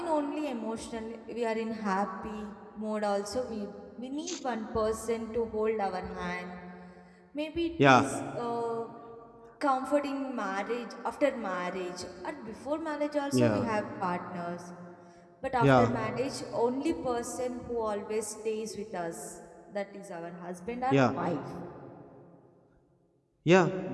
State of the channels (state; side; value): identical; both; correlation 1.00